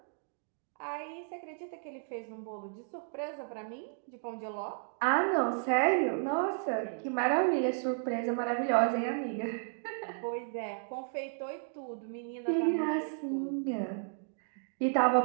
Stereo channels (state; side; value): silent; left; digital silence